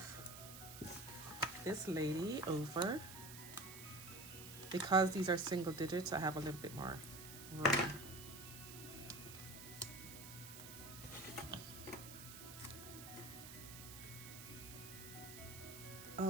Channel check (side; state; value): right; noise; hiss, 12 dB below the sound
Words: this lady over. Because these are single digits, I have a little bit more room.